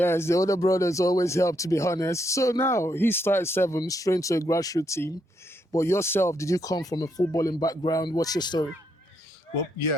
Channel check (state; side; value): normal; both; correlation 0.77